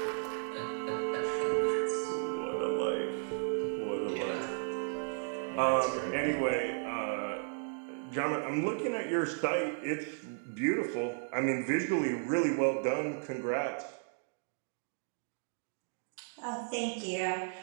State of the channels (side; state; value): left; silent; 55 dB below the other